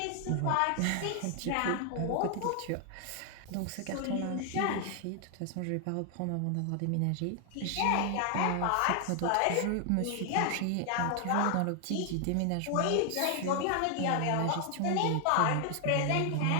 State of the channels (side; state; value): both; different; correlation 0.00